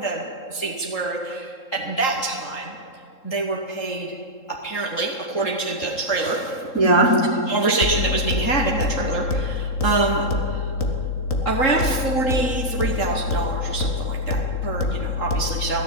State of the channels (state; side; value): late; right; 3.7 ms